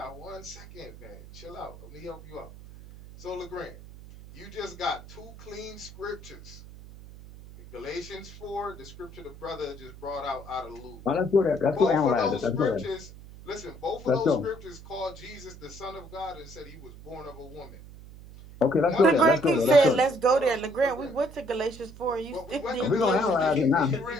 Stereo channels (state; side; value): noise; right; hum, 17 dB below the sound